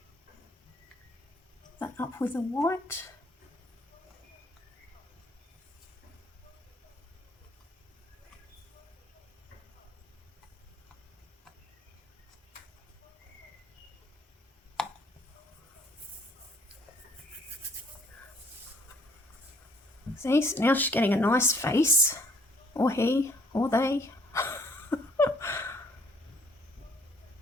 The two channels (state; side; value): normal; both; correlation 0.62